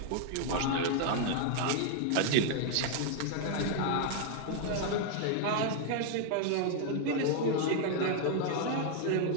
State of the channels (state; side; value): different; both; correlation 0.00